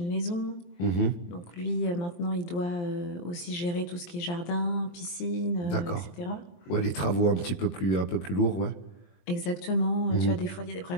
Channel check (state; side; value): late; right; 23 ms